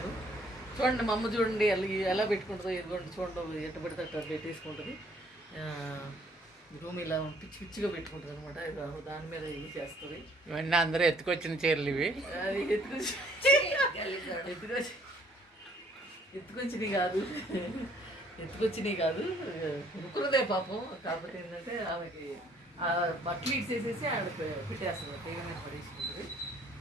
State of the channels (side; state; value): both; normal; correlation 0.61